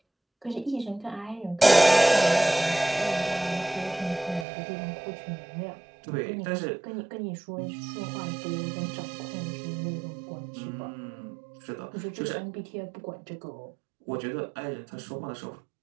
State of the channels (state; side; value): drops out; left; at 4.5 s